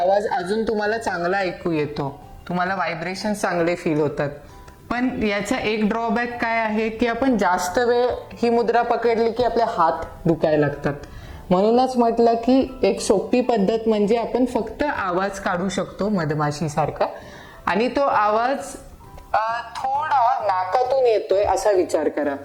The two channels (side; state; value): both; identical; correlation 1.00